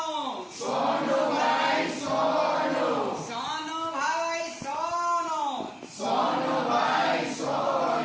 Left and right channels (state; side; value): identical; both; correlation 1.00